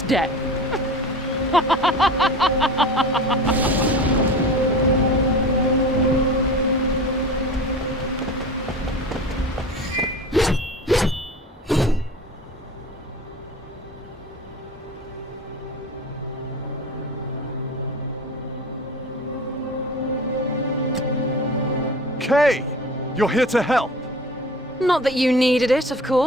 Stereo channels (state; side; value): normal; both; correlation 0.36